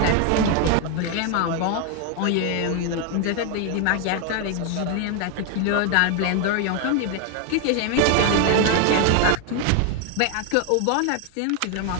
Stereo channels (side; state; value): both; different; correlation 0.01